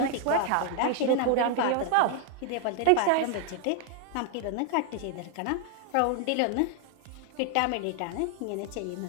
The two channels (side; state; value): both; different; correlation 0.00